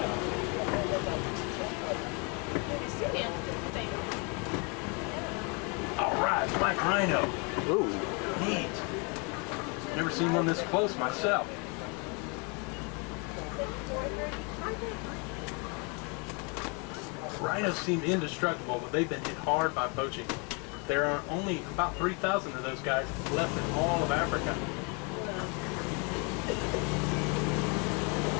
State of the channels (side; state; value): right; quieter; 33.2 dB